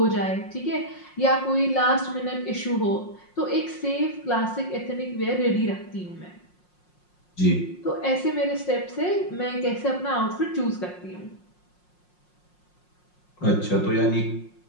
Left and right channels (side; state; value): right; late; 5.6 ms